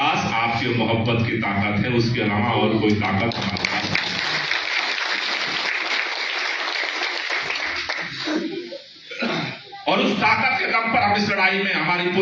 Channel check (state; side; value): identical; both; correlation 1.00